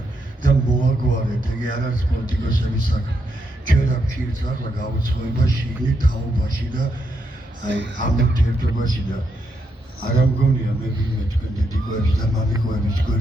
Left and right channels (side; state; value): both; normal; correlation 0.80